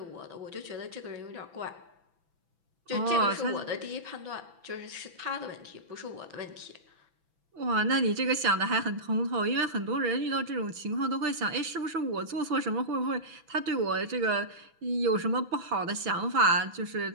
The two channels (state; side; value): late; left; 6.0 ms